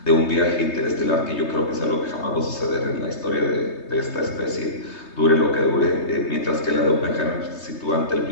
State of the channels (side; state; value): right; late; 3.2 ms